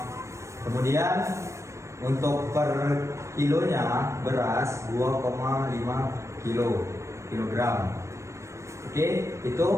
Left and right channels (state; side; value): late; left; 0.14 ms